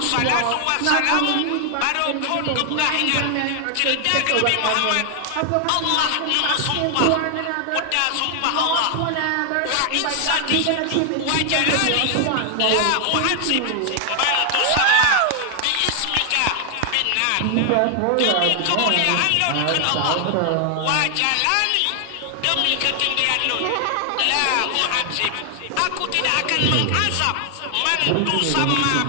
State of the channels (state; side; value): different; both; correlation 0.00